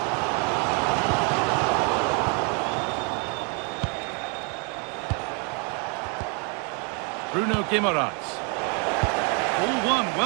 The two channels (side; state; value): left; quieter; 35.9 dB